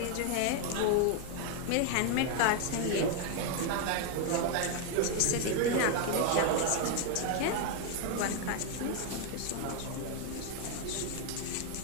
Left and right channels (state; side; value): different; both; correlation 0.00